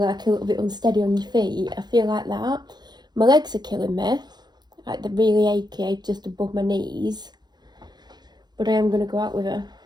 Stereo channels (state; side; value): late; left; 0.20 ms